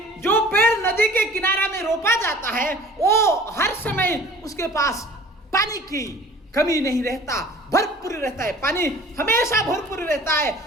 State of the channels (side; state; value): both; normal; correlation 0.47